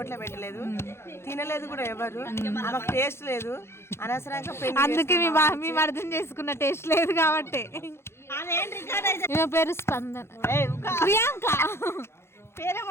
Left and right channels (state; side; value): late; right; 0.12 ms